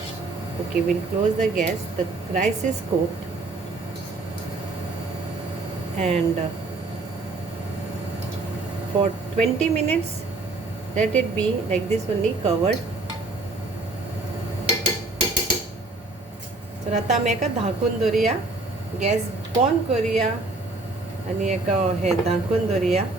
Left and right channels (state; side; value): quieter; left; 3.2 dB